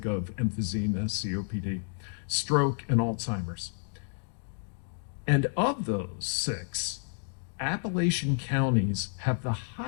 of emphysema, COPD, stroke, and Alzheimer's. And of those 6, Appalachian counties have the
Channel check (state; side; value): silent; right; digital silence